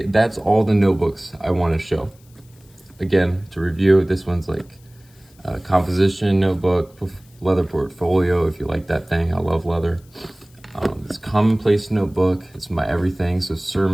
that's all the notebooks I want to show. Again, to review, this one's like a composition notebook, leather portfolio, if you like that thing. I love leather. This Commonplace notebook, it's my everything. So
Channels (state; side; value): noise; left; hiss, 30 dB below the sound